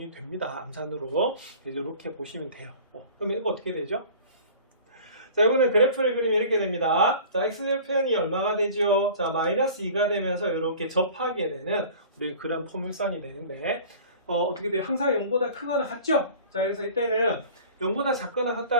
됩니다. 암산으로. 이렇게 보시면 돼요. 그러면 이거 어떻게 되죠? 자, 이거는 그래프를 그리면 이렇게 됩니다. 자, x절편이 얼마가 되죠? 자, 마이너스 2가 되면서 이렇게 접하게 되는 우리 그런 포물선이 되는데 어떻게 돼요? 항상 0보다 크거나 같죠? 자, 그래서 이때는 0보다 작거나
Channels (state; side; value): inverted; both; correlation -0.43